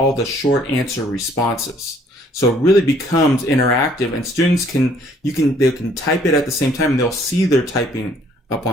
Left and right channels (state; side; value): normal; both; correlation 0.61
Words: the short answer responses. So it really becomes interactive and students they can type it at the same time and they'll see their typing up